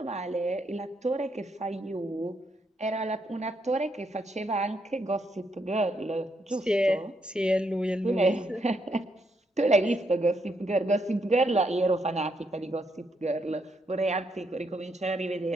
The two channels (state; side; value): normal; both; correlation 0.77